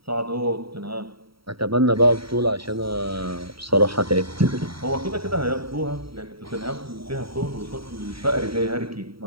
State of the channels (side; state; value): left; late; 0.75 ms